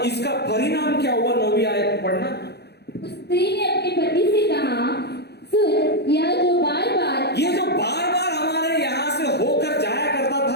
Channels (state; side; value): late; right; 0.48 ms